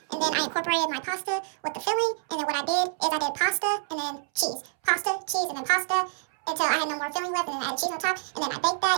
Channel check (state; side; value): silent; left; 60 dB below the other